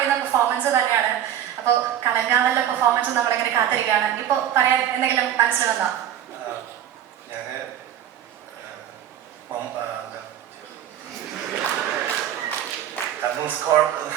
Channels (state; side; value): quieter; left; 10.5 dB